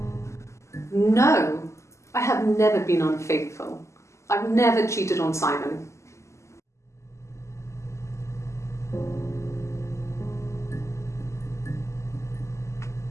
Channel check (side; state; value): right; late; 0.14 ms